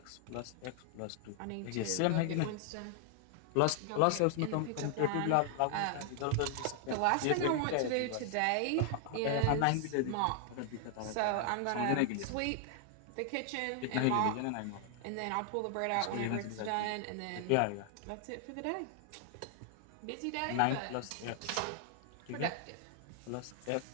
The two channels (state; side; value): different; both; correlation 0.00